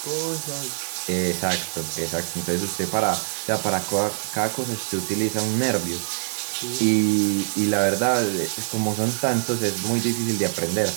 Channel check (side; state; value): left; silent; digital silence